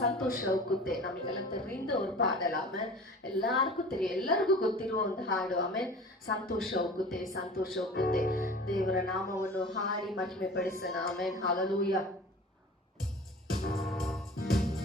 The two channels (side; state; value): both; normal; correlation 0.40